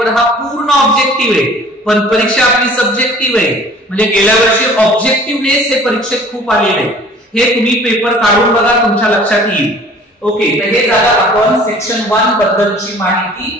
हा पूर्ण ऑब्जेक्टिव्ह आहे पण परीक्षा आपली सब्जेक्टिव्ह आहे. म्हणजे गेल्या वर्षी ऑब्जेक्टिव्हनेस हे परीक्षेत खूप आलेले आहे. हे तुम्ही पेपर काढून बघा, तुमच्या लक्षात येईल. ओके, तर हे झालं आपण सेक्शन 1 बद्दलची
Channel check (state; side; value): normal; both; correlation 0.50